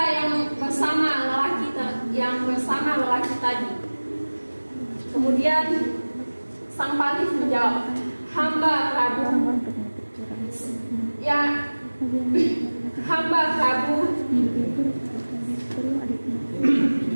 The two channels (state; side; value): inverted; both; correlation -1.00